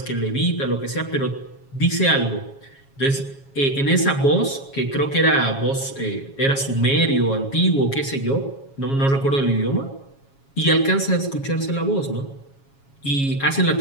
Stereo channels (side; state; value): right; late; 7.3 ms